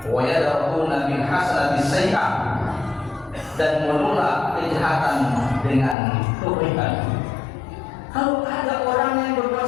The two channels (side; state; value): right; drops out; at 6.0 s